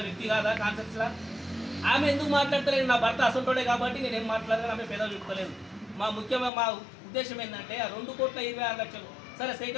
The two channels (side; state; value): right; drops out; at 6.5 s